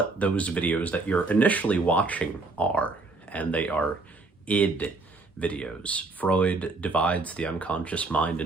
those videos that you're initially watching are, and they are id videos. Freud divides the unconscious mind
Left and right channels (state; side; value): quieter; left; 3.5 dB